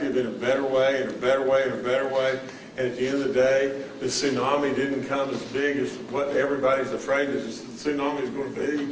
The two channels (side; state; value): both; identical; correlation 1.00